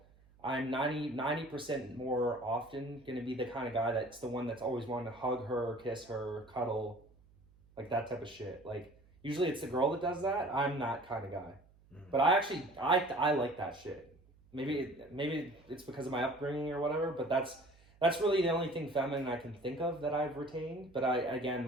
I'm 90% more often going to be the kind of guy that's the one that's always wanting to hug her, kiss her, cuddle, like that type of shit. Like usually it's the girl that does that. I'm that kind of guy. But I like that shit. Maybe it's because of my upbringing or whatever, but that's really the only thing feminine I can think of that I've retained. But I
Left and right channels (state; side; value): noise; right; hum, 28 dB below the sound